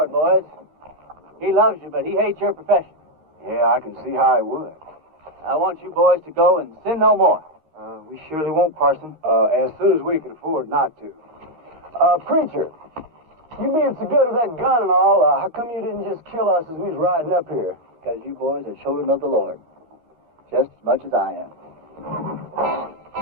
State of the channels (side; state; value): left; late; 13 ms